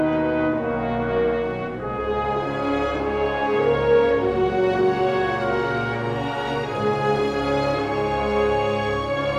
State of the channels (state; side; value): identical; both; correlation 1.00